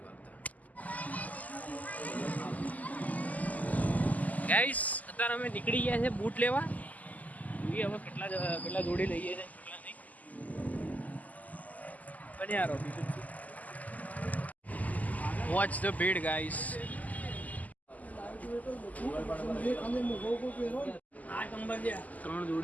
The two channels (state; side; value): late; right; 0.077 ms